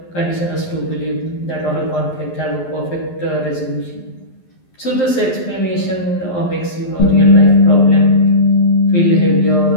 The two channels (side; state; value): right; late; 11 ms